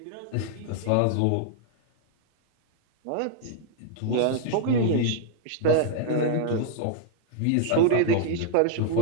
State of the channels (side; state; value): both; different; correlation 0.00